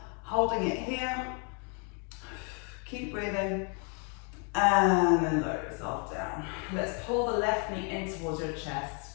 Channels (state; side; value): quieter; right; 38.2 dB